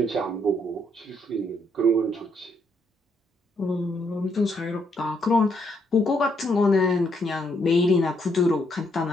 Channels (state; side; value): normal; both; correlation 0.74